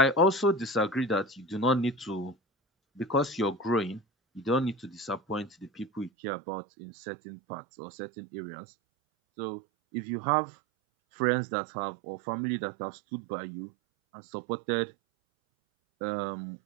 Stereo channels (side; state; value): left; drops out; at 6.1 s